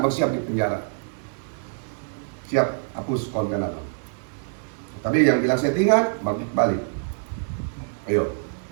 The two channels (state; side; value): silent; left; digital silence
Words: siap di penjara, siap hapus konten abang. Tapi yang bilang settingan, balik, ayo